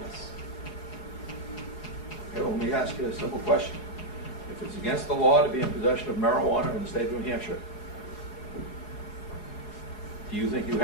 Okay, well, let me ask you a simple question. If it's against the law to be in possession of marijuana in the state of New Hampshire, do you think you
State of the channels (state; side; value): late; right; 4.8 ms